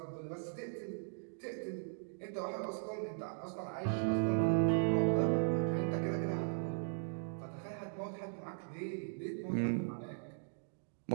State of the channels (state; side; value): silent; left; digital silence